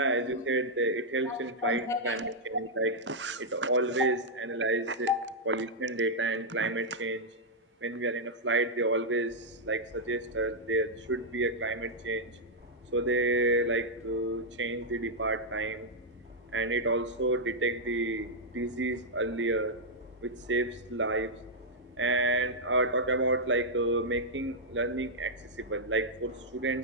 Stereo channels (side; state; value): both; normal; correlation -0.05